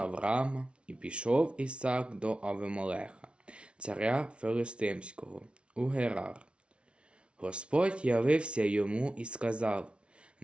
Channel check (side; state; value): left; late; 0.059 ms